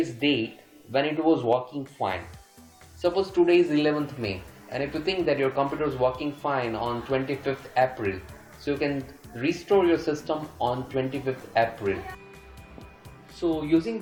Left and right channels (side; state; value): both; identical; correlation 1.00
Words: date when it was working fine. Suppose today is 11th May, and if you think that your computer is working fine on 25th April, so you can restore your system on 25th April. So using